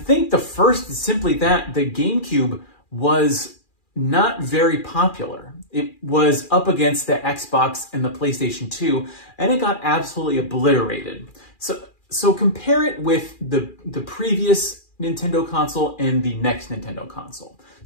the first is simply that the GameCube was not very popular. It was up against the Xbox and the PlayStation 2, and it got absolutely obliterated. So compare it with the previous Nintendo console and the next Nintendo console.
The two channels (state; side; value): late; right; 2.4 ms